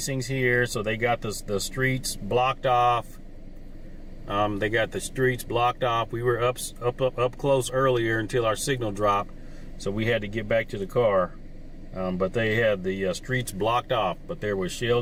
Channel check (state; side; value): identical; both; correlation 1.00